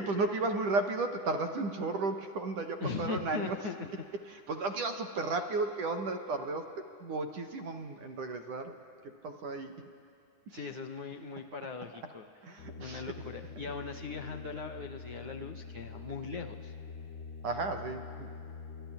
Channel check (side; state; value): left; late; 10 ms